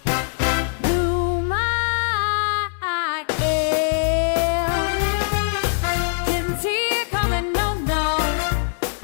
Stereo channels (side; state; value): right; silent; digital silence